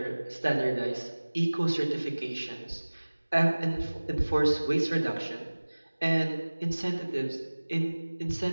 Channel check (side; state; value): both; inverted; correlation -1.00